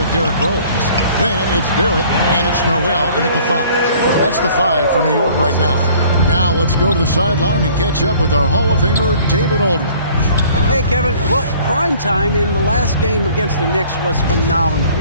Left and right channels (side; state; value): both; inverted; correlation -0.53